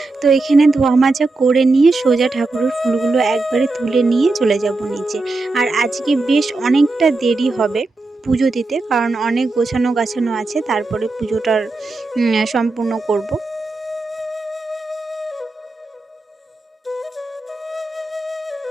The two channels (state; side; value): quieter; left; 3.3 dB